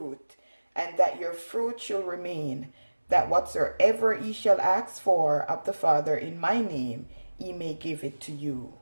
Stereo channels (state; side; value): inverted; both; correlation -1.00